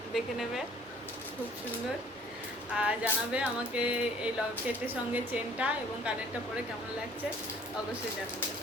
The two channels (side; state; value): both; normal; correlation 0.54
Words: দেখে নেবে, খুব সুন্দর। আর জানাবে আমাকে এই লকেটের সঙ্গে চেনটা এবং কানেরটা পরে কেমন লাগছে, অবশ্যই জানাবে।